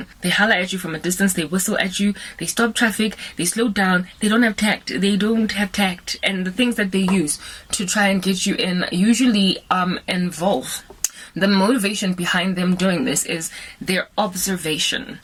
They holler at you from a distance. They whistle at you. They stop traffic. They slow down. They don't have tact. And the things that they use to try and get you in usually involve. The motivation behind them doing this is their observation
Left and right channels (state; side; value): identical; both; correlation 1.00